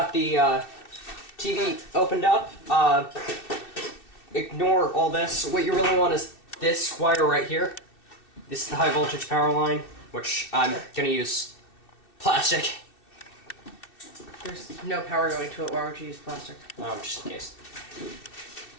the TV opened up. Ignore all this. What you really want is this wire right here. This is the high voltage power line, which I'm gonna use plastic. There's no power going to it. Why would you use plastic? Just in case.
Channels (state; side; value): late; right; 2.6 ms